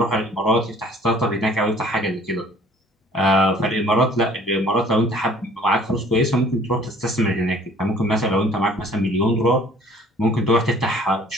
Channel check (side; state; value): both; normal; correlation 0.54